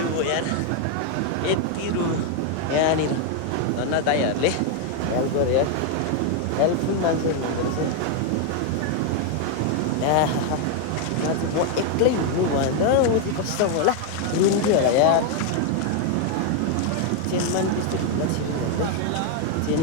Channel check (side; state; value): both; different; correlation 0.01